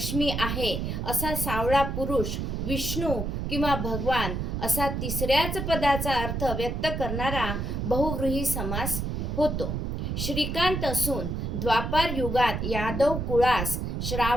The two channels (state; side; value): noise; right; rumble, 2 dB below the sound